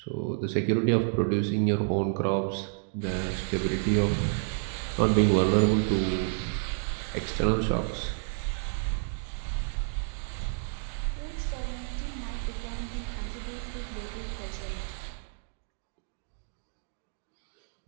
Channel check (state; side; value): silent; left; digital silence